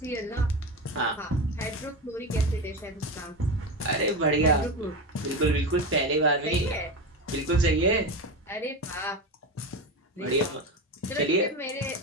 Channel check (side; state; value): both; normal; correlation 0.20